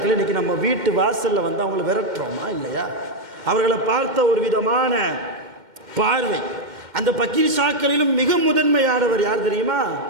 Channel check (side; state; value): left; late; 2.1 ms